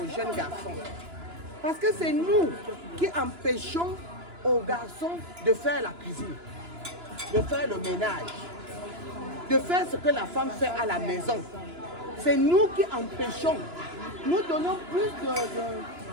jeunes garçons? Parce que c'est nous qui empêchons aux garçons de faire la cuisine, de faire le ménage, de faire ce que la femme fait à la maison. C'est nous qui empêchons. Nous donnons plus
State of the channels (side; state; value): left; late; 2.9 ms